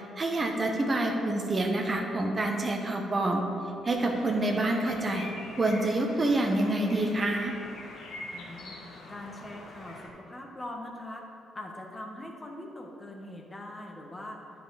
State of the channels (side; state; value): both; normal; correlation 0.81